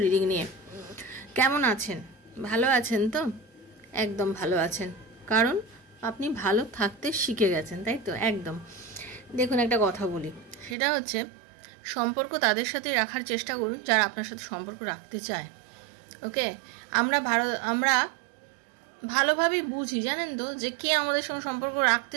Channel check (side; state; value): left; drops out; at 10.8 s